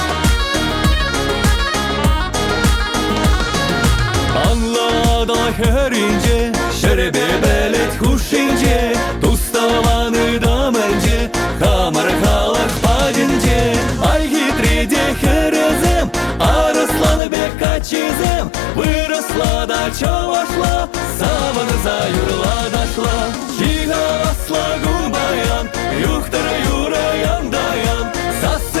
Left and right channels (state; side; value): drops out; right; at 17.2 s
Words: Anlada herince, şerebi belet huşince, Туставаны даманже, хамар халах падинже, Ай хитриде херезем, Арысланы бек качезем, Выросла да чавашла, Саваны заюрла дашла, Чига асла гумбаян, Юхтара юраян даян,